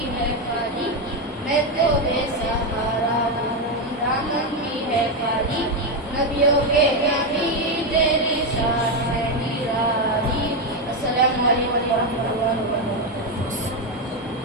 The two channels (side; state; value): both; normal; correlation 0.07